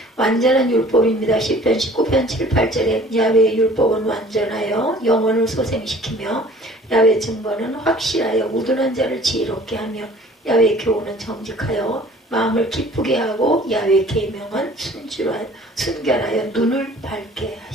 완전한 율법입니다. 시편 19편 7, 8절에 야훼의 율법은 완전하여 영혼을 소생시키며 야훼 증거는 확실하여 우둔한 자를 지혜롭게 하며 야훼 교훈은 정직하여 마음을 기쁘게 하고 야훼 계명은 순결하여 눈을 밝게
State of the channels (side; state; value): both; normal; correlation 0.50